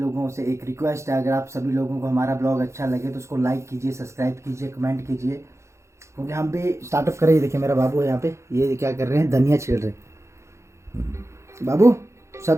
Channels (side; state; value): left; late; 0.14 ms